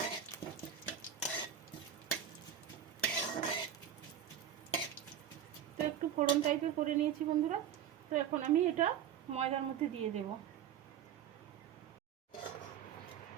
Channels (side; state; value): left; quieter; 9.4 dB